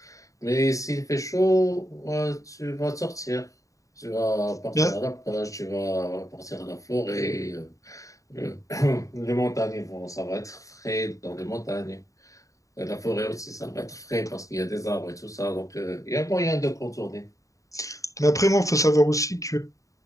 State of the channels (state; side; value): late; right; 0.16 ms